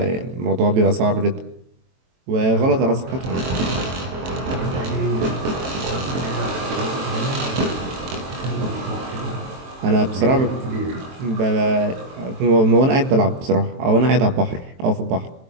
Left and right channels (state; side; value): late; left; 23 ms